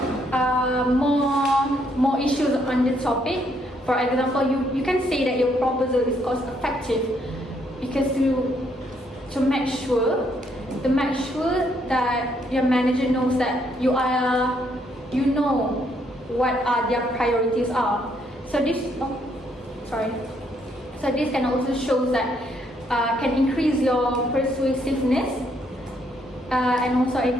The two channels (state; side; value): normal; both; correlation 0.72